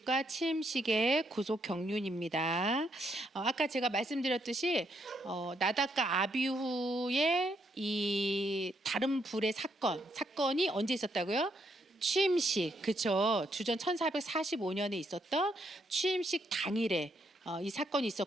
취임식의 구속 경륜입니다. 아까 제가 말씀드렸듯이 나답과 아비후의 이 다른 불의 사건이 언제 있었다고요? 취임식, 그쵸? 주전 1445년에 있었던 취임식 당일에 이 사건이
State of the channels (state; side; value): normal; both; correlation 0.76